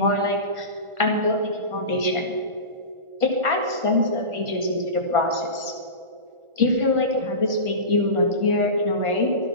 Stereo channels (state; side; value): late; left; 1.4 ms